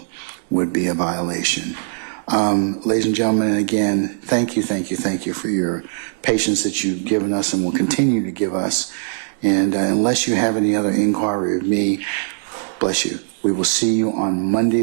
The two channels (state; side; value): silent; left; digital silence